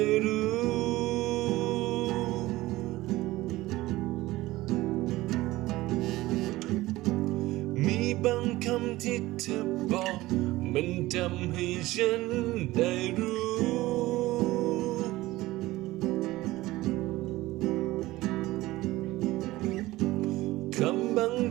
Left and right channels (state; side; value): quieter; left; 18.1 dB